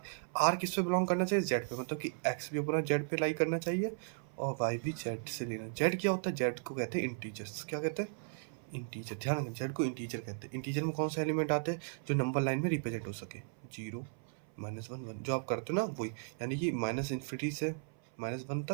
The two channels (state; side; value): silent; left; 54 dB below the other